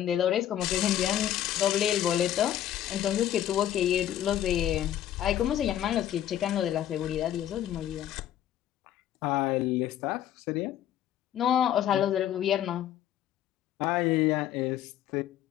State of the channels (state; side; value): quieter; right; 11.4 dB